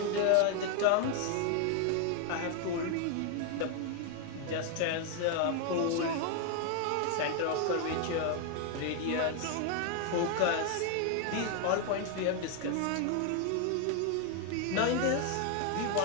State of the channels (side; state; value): both; different; correlation 0.00